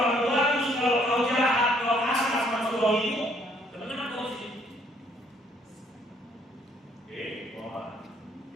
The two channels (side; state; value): both; normal; correlation 0.65